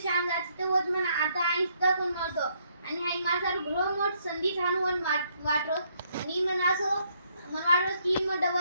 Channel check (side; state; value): both; inverted; correlation -0.71